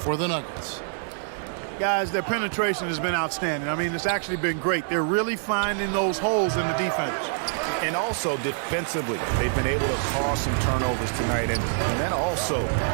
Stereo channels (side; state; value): left; silent; 61 dB below the other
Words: the Nuggets. Guys, their penetration has been outstanding. I mean, it's actually been great. They're really finding those holes in the defense. And also defensively, they've been able to cause some turnovers tonight, and that also